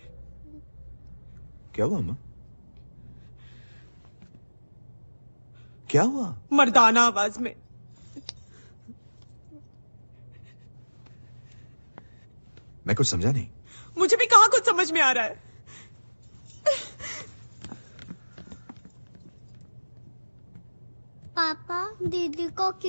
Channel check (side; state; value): both; inverted; correlation -1.00